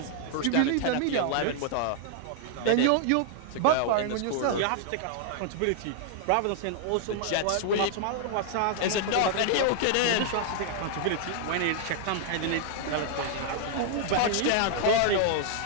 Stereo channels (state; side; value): different; both; correlation -0.01